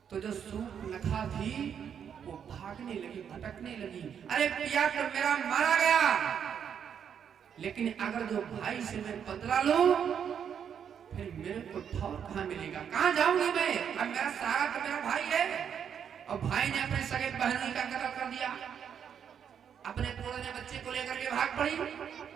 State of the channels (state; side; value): quieter; left; 8.0 dB